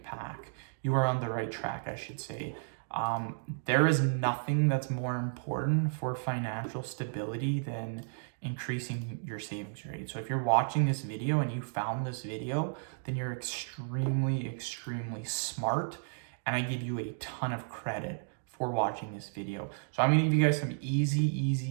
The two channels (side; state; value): left; silent; digital silence